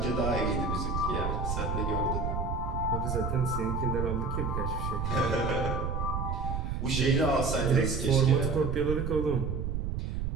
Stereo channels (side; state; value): right; noise; rumble, 1 dB below the sound